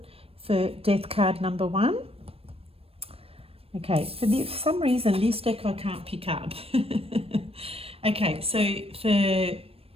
for death card number 1. Okay, for some reason this deck I can't pick up. Okay, so for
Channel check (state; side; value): late; left; 0.28 ms